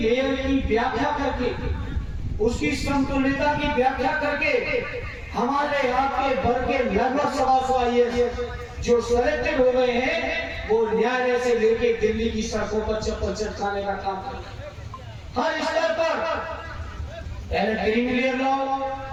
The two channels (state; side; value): identical; both; correlation 1.00